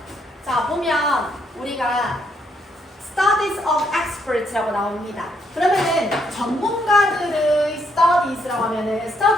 자, 보면 우리가 Studies of Experts라고 나옵니다. 그러면은 전문가들의 Studies라고 하면은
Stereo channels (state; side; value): normal; both; correlation 0.74